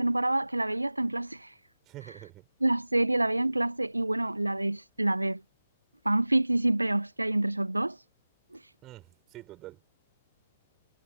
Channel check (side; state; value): both; inverted; correlation -1.00